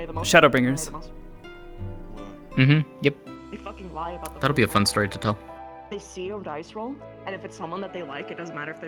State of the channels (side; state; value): both; identical; correlation 1.00